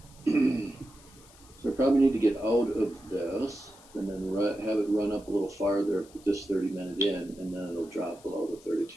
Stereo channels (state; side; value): noise; left; hiss, 24 dB below the sound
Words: So I probably need to get out of this and then have it run up a little farther with this 30-minute in, and then it'll drop below the